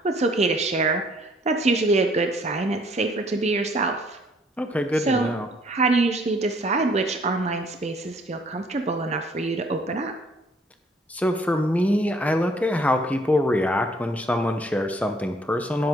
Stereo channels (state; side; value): normal; both; correlation 0.61